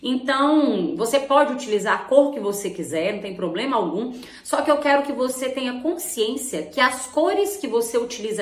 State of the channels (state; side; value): identical; both; correlation 1.00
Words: você pode utilizar a cor que você quiser, não tem problema algum, só que eu quero que você tenha consciência que as cores que você